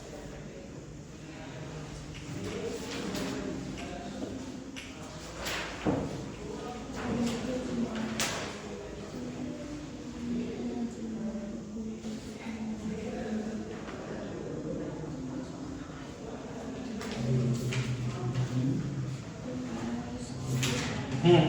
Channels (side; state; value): both; identical; correlation 1.00